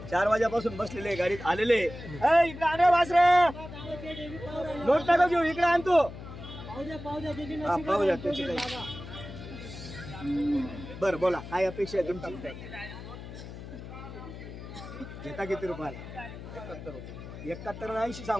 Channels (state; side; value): noise; left; hum, 12 dB below the sound